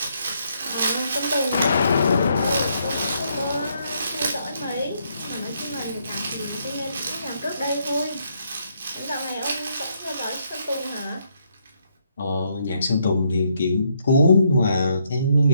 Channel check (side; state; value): both; inverted; correlation -0.74